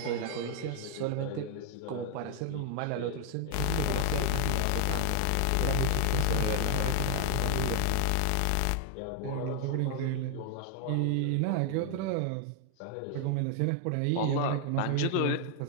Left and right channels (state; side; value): different; both; correlation 0.00